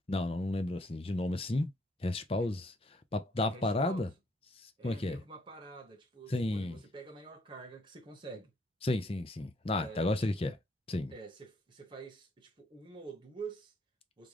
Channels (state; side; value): normal; both; correlation 0.69